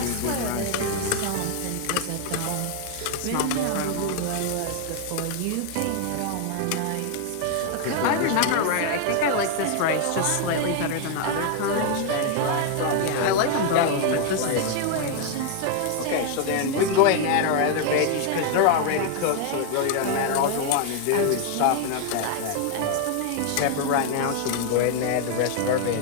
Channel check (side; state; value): both; different; correlation 0.00